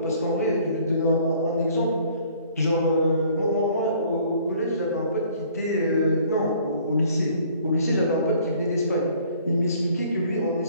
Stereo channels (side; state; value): both; inverted; correlation -0.56